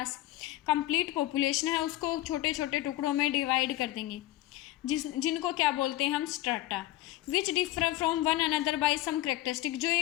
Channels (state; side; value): quieter; right; 16.1 dB